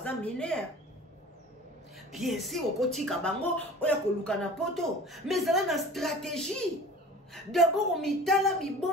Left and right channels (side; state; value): both; normal; correlation 0.41